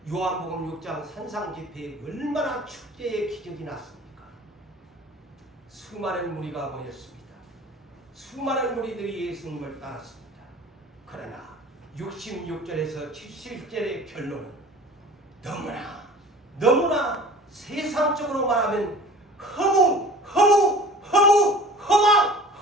6장 산상집회에 얼마나 축제의 기적이 났습니까? 수많은 무리가 모였습니다. 수많은 무리들이 예수님을 따랐습니다. 그러나 66절에서 70절의 결론은 너무나 세상적으로 말하면 허망!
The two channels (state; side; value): normal; both; correlation 0.43